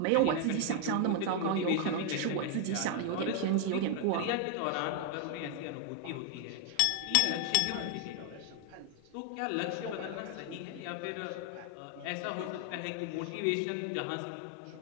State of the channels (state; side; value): different; both; correlation 0.00